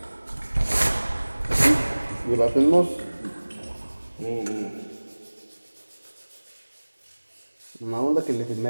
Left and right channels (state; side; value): inverted; both; correlation -1.00